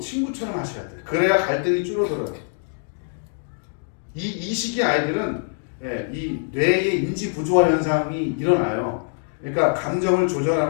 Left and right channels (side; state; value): right; silent; 63 dB below the other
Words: 하셔야 돼요. 그래야 갈등이 줄어들어요. 이 시기 아이들은 이 뇌의 인지 부조화 현상이 일어나요. 그러니까 감정을